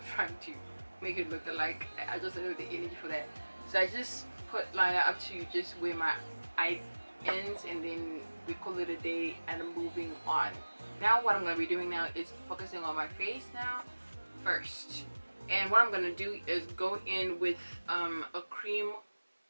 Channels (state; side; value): inverted; both; correlation -1.00